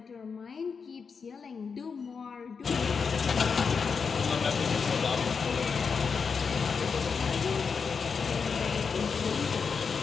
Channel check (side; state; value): right; quieter; 5.7 dB